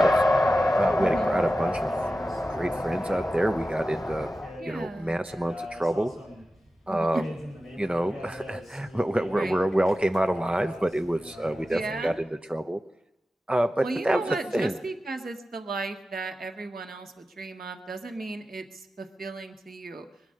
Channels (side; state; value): both; normal; correlation 0.93